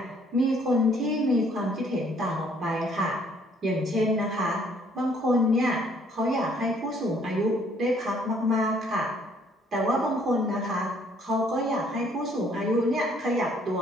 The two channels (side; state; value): both; normal; correlation 0.63